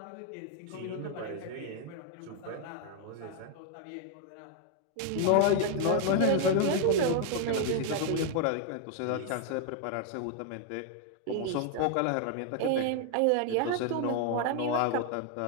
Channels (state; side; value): different; both; correlation 0.00